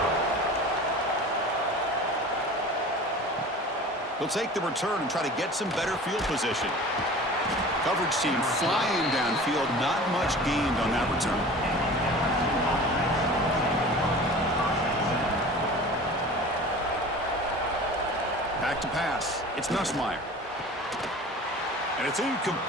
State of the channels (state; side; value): normal; both; correlation 0.39